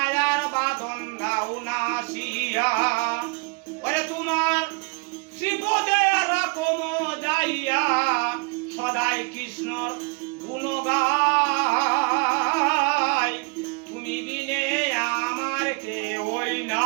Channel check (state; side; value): quieter; left; 30.3 dB